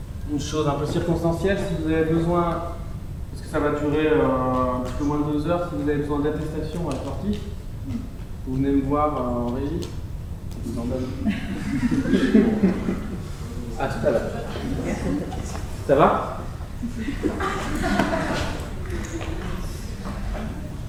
une chose un peu circonstancielle, si vous avez besoin, parce que ça va durer un petit peu moins de 2 heures, si vous avez besoin d'attestation à la sortie, vous venez me voir en régie. Je vous en donne. À tout à l'heure. Ça va?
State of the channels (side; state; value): both; identical; correlation 1.00